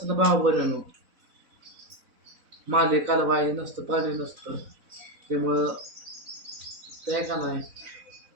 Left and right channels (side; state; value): left; late; 4.0 ms